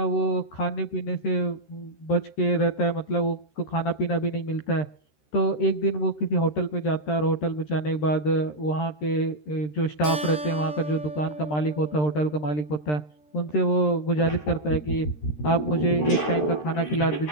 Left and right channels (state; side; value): late; right; 13 ms